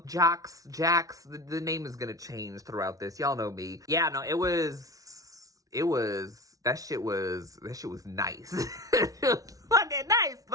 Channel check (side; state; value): left; late; 0.17 ms